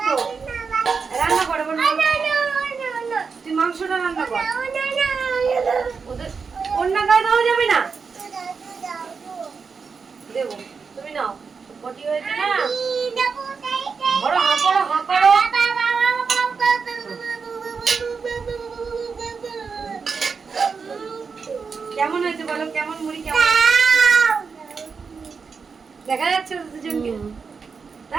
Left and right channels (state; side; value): quieter; left; 5.4 dB